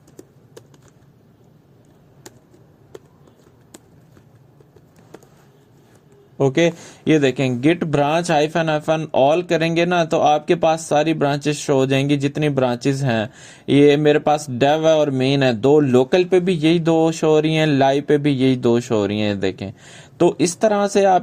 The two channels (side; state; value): both; identical; correlation 1.00